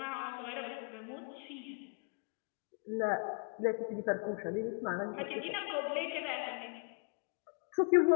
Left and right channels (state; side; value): quieter; right; 39.2 dB